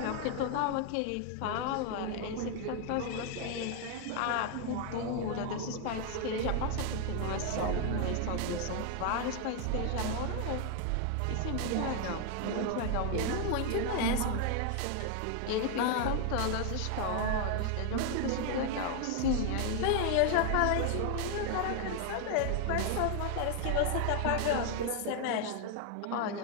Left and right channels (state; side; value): different; both; correlation 0.00